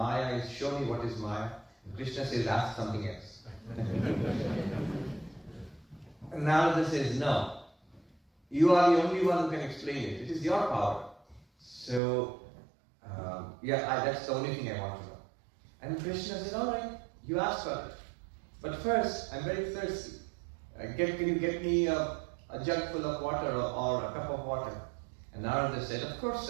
is? Show me what is Maya. And Krishna says, ask something else. And Narada says, no. You are the only one who can explain it. It is your power. So, that's the only thing I want to know. And Krishna said, all right, you ask for it. But first, I'm very thirsty. Can you get me a jug full of water or a cup of water? And Narada said, of course,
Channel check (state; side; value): drops out; left; at 12.0 s